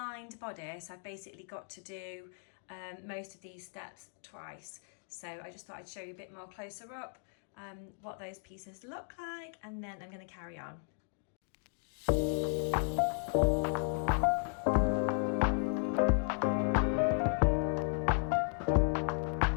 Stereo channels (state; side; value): silent; right; 54 dB below the other